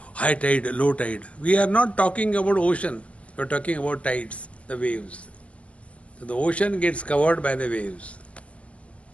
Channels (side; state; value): right; late; 0.063 ms